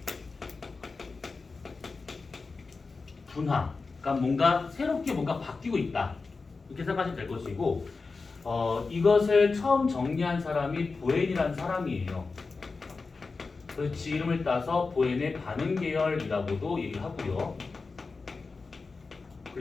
분화, 그러니까 뭔가 새롭게 뭔가 바뀌고 있다. 이렇게 생각하시면 될 것이고 이것을 처음 정리한 사람이 보엔이라는 사람이에요. 그 지 이름을 따서 보엔의 반응 계열이라고도 얘기를 하고요.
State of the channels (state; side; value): quieter; right; 4.2 dB